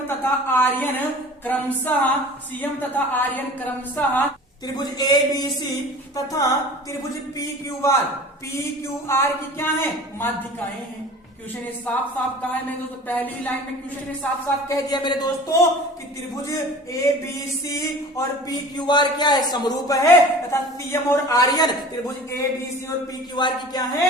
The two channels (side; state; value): both; normal; correlation 0.41